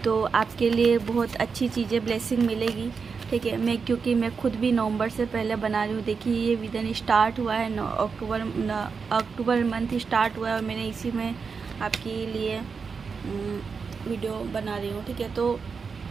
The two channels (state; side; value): quieter; left; 5.4 dB